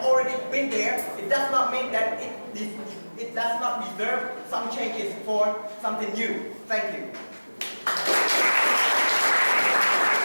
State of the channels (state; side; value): inverted; both; correlation -1.00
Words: already been there, it does not mean that it does not deserve some changes for something new. Thank you.